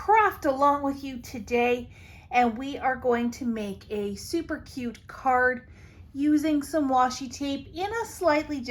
along with you today, and we are going to make a super cute card using some washi tape in a slightly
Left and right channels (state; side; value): identical; both; correlation 1.00